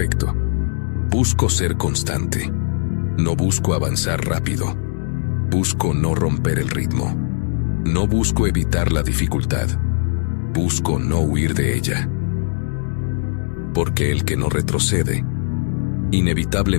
Busco ser constante. No busco avanzar rápido. Busco no romper el ritmo. No busco evitar la dificultad. Busco no huir de ella. Porque el que no retrocede,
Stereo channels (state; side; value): silent; right; digital silence